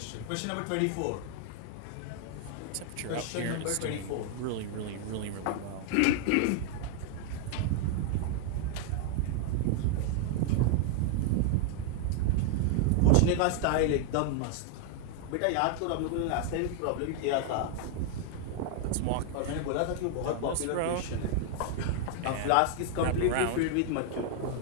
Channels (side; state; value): both; different; correlation 0.00